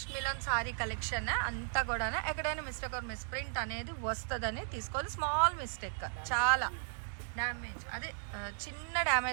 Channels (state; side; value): silent; left; digital silence